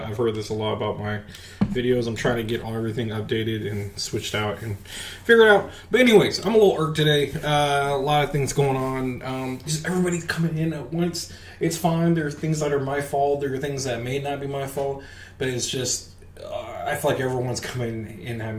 I've heard this a lot about my videos. I'm trying to get everything updated and switched out and figure it out. But anyways, I'm a little irked today. A lot of things going on. Just everybody's coming in at once. It's fine. There are things that are my fault. There are things that may not be my fault. But it's just, I feel like everyone's coming in at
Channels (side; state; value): both; identical; correlation 1.00